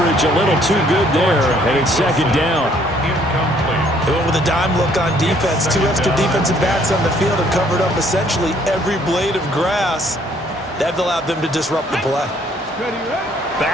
a little too good there. And it's 2nd down. They went with a dime look on defense. 2 extra defensive backs on the field and covered up essentially every blade of grass. That allowed them to disrupt the play.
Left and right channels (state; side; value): normal; both; correlation 0.64